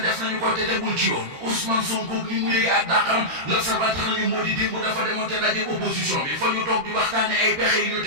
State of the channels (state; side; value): late; left; 13 ms